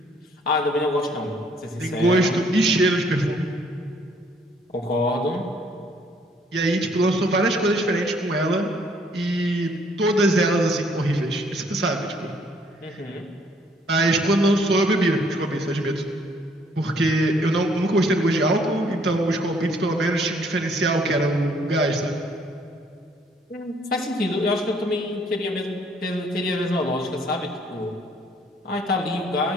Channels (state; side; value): normal; both; correlation 0.64